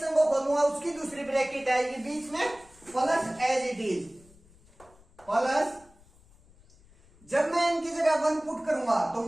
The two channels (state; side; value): noise; left; rumble, 27 dB below the sound